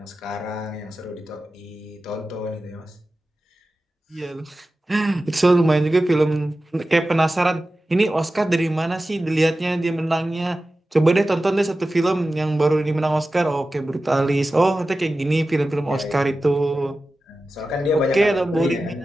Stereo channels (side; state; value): both; normal; correlation 0.94